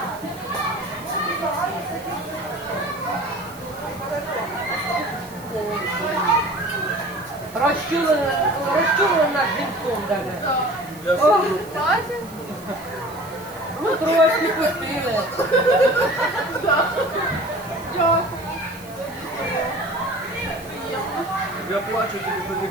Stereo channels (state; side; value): noise; right; hiss, 20 dB below the sound